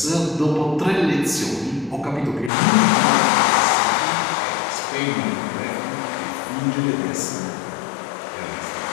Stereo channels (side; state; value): right; drops out; at 2.5 s